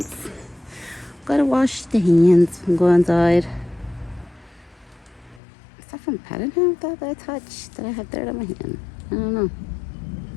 Gotta wash the hands and go inside. Is that from petting him that I touched? Did I have dirt on my hand? I don't know.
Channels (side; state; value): right; drops out; at 5.4 s